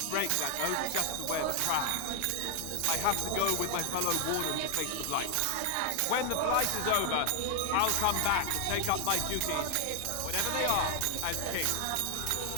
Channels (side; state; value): both; different; correlation 0.00